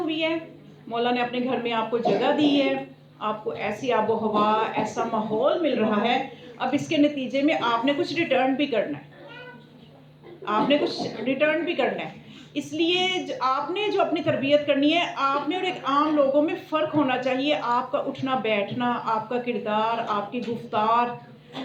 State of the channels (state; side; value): identical; both; correlation 1.00